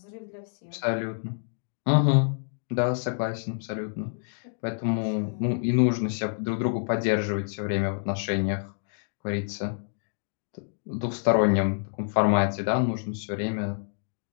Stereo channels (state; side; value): silent; right; digital silence